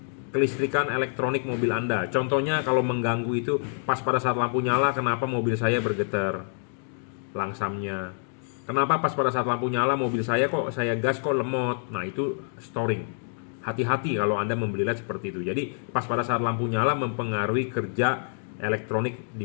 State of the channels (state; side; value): silent; right; 59 dB below the other